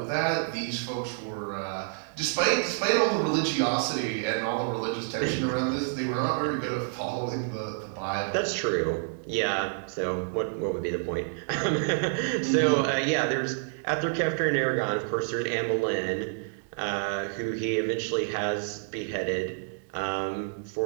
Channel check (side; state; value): left; silent; digital silence